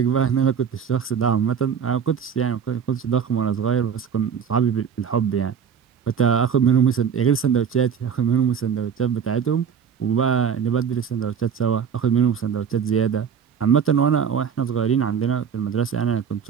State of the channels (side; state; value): left; quieter; 7.4 dB